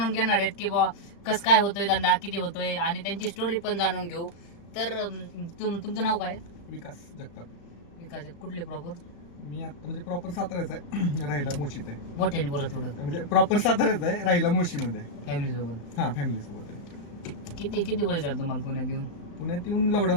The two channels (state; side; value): late; right; 35 ms